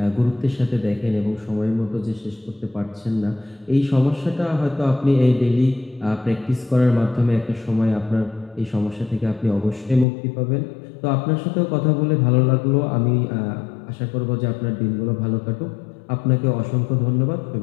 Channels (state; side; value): drops out; right; at 10.1 s